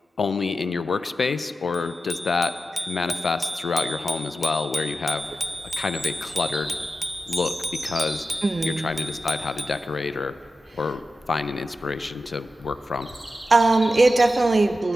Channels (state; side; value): normal; both; correlation 0.91